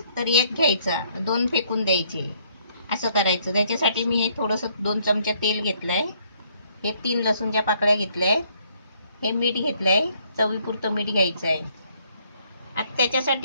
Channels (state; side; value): inverted; both; correlation -0.67